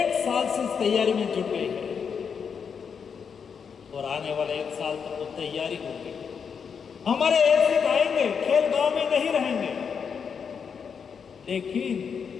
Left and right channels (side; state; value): right; quieter; 6.5 dB